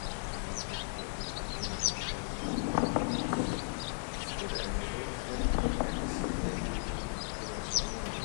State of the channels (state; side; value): silent; right; 54 dB below the other